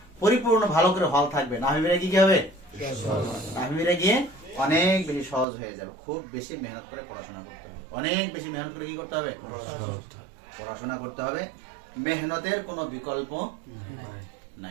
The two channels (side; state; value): left; drops out; at 5.5 s